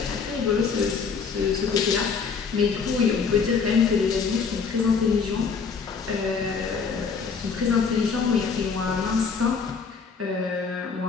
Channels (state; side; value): quieter; right; 5.5 dB